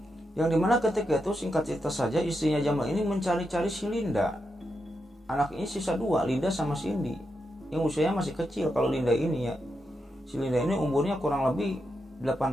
yang dimana ketika itu singkat cerita saja istrinya Jamal ini mencari-cari si Linda. Anak ini sisa 2, Linda sama Cindy, yang usianya masih kecil. Kalau Linda ini ya, si Linda ini umurnya kurang lebih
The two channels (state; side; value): normal; both; correlation 0.85